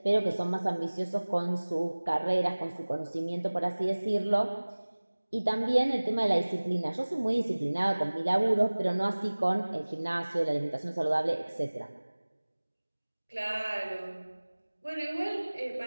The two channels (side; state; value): both; inverted; correlation -1.00